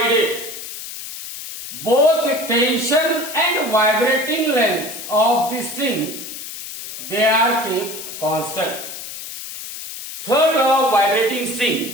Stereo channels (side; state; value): left; noise; hiss, 10 dB below the sound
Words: both tension and vibrating length of the string they are kept constant. Third law of vibrating